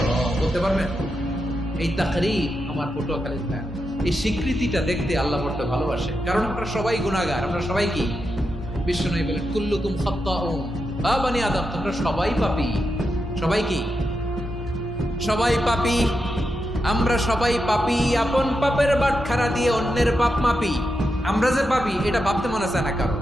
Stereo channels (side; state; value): both; normal; correlation 0.86